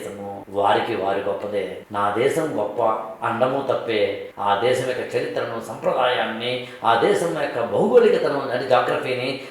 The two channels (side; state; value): both; identical; correlation 1.00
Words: వారికి వారి గొప్పదే. నా దేశం గొప్ప అండము తప్పే, ఆ దేశం యొక్క చరిత్రను, సంప్రదాయాన్ని, ఆ దేశం యొక్క భౌగోళికతను, అంటే జాగ్రఫీని